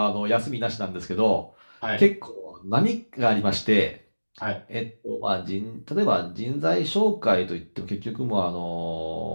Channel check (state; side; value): inverted; both; correlation -1.00